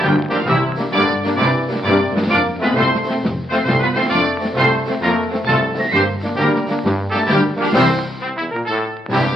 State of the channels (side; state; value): both; normal; correlation 0.81